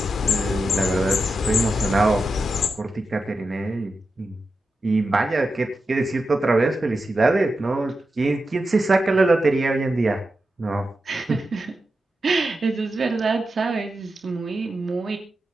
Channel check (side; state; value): both; normal; correlation 0.90